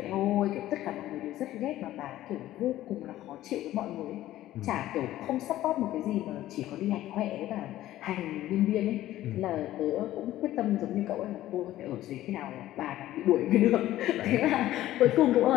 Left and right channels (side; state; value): right; quieter; 14.4 dB